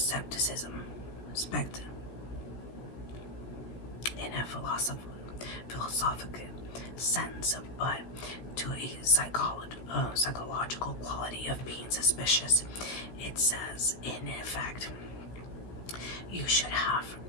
in a philosophical sense, but to a psychological quality of being suspicious. It says, in effect, you should have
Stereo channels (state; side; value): late; right; 16 ms